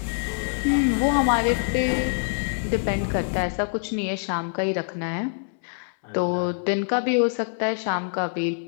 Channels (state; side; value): silent; right; 62 dB below the other